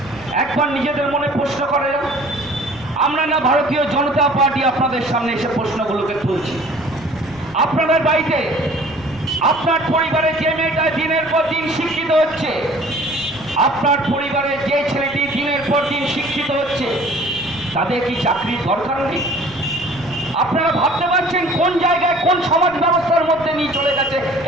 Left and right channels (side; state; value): right; noise; rumble, 21 dB below the sound